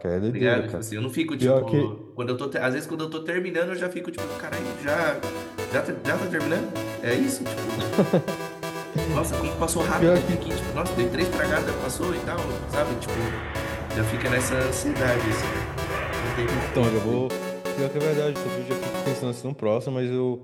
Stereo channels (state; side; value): identical; both; correlation 1.00